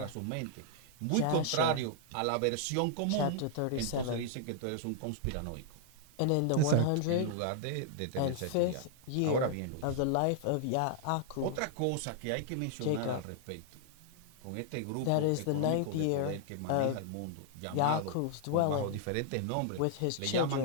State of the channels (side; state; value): both; different; correlation -0.01